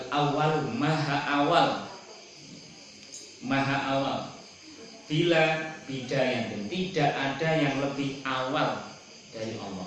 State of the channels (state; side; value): identical; both; correlation 1.00